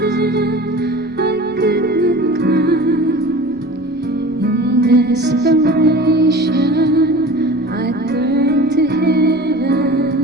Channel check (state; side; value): normal; both; correlation 0.38